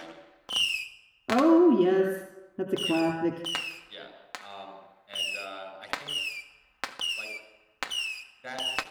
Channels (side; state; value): both; identical; correlation 1.00